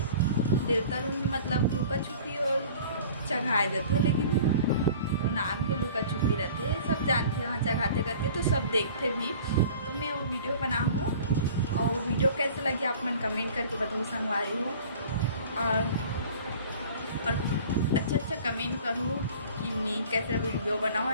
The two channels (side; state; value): both; inverted; correlation -0.45